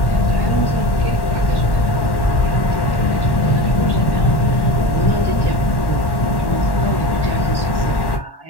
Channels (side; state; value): right; late; 1.1 ms